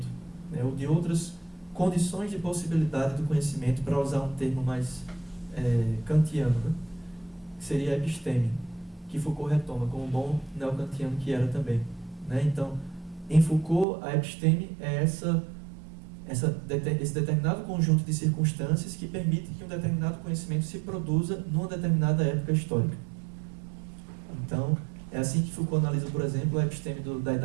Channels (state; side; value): drops out; left; at 13.9 s